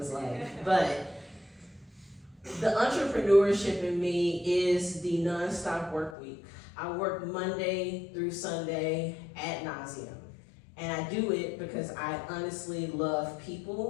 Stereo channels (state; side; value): drops out; right; at 6.2 s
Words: life. But the entrepreneurship in me is the nonstop work week. I work Monday through Sunday ad nauseum. And I do it because I honestly love